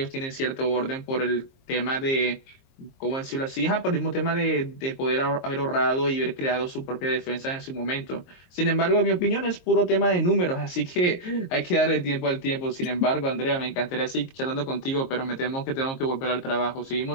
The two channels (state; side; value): late; right; 22 ms